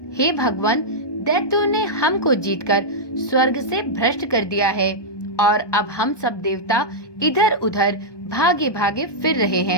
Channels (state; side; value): late; right; 1.2 ms